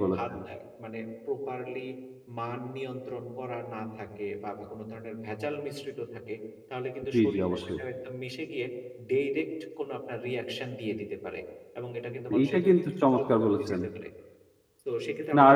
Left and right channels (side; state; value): both; identical; correlation 1.00